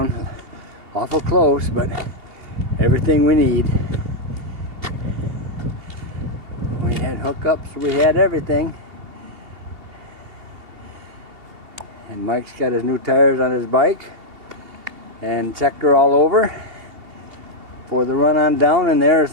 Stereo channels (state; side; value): late; left; 2.7 ms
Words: Awful close, but everything we need. We had hookups, we had everything. And Mike's got his new tires on his bike and checked her all over for the run on down, and there's